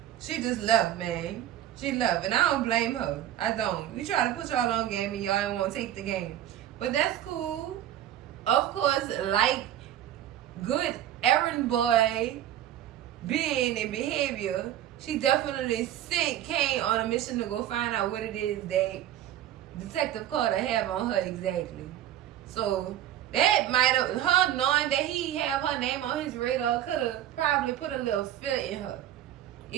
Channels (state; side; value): quieter; left; 12.0 dB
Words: She just left, man. She left. And I don't blame her. I don't. We try to put y'all on game and y'all ain't want to take the game. But that's cool. Of course, like good errand boy being and behavior, she definitely sent Kane on a mission to go find out what it is that Detective Carter have on her exactly. So that might have, her knowing that he have her name on his radar could have probably put a little fear in her.